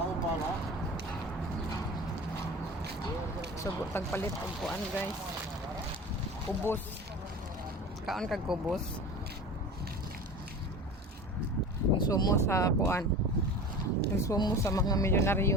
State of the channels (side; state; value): both; normal; correlation 0.35